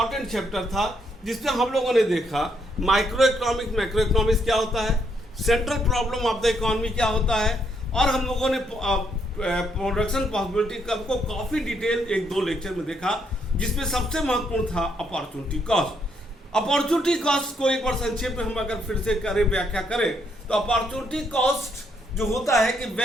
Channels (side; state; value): both; normal; correlation 0.74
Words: चैप्टर था, जिसमें हम लोगों ने देखा माइक्रो इकोनॉमिक्स, मैक्रो इकोनॉमिक्स क्या होता है, central problem of the economy क्या होता है, और हम लोगों ने प्रोडक्शन पॉसिबिलिटी कर्व को काफी डिटेल 1-2 लेक्चर में देखा, जिसमें सबसे महत्वपूर्ण था अपॉर्चुनिटी कॉस्ट। अपॉर्चुनिटी कॉस्ट को एक बार संक्षेप में हम अगर फिर से करें, व्याख्या करें, तो अपॉर्चुनिटी कॉस्ट जो होता है कि